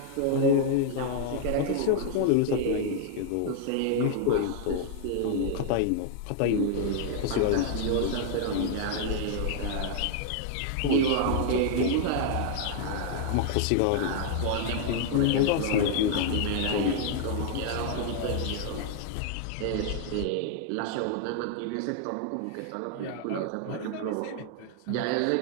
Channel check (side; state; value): both; different; correlation 0.00